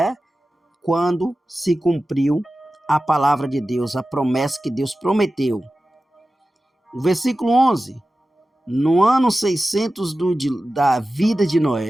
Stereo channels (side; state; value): both; normal; correlation 0.94